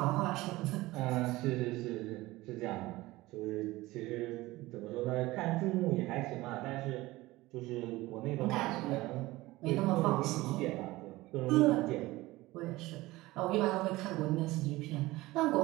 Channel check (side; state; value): left; quieter; 19.1 dB